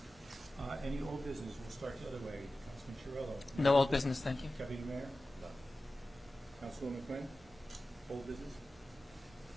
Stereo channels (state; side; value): normal; both; correlation 0.95